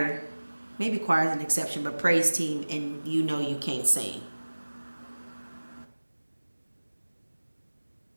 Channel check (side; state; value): both; inverted; correlation -1.00